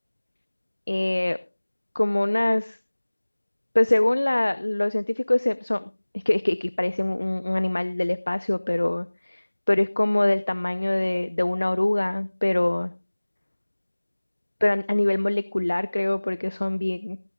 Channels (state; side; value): inverted; both; correlation -1.00